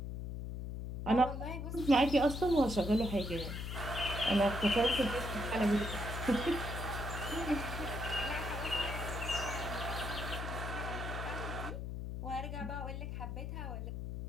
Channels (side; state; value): left; noise; hum, 5 dB below the sound